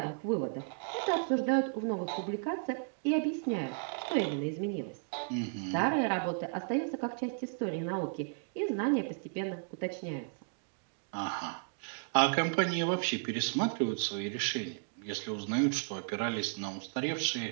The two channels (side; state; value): left; silent; digital silence